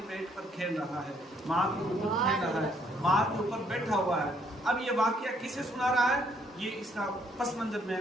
पेट पर खेल रहा है, माँ के ऊपर खेल रहा है, माँ के ऊपर बैठा हुआ है। अब ये वाक़या किसे सुना रहा है, ये इसका पस मंजर मैं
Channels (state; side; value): normal; both; correlation 0.67